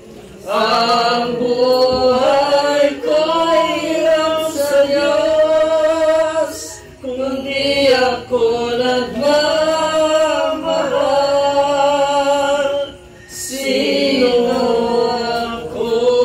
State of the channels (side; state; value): both; identical; correlation 1.00